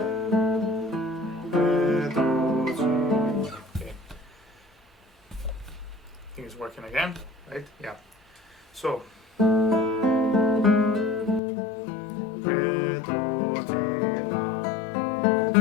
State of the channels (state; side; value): drops out; right; at 11.4 s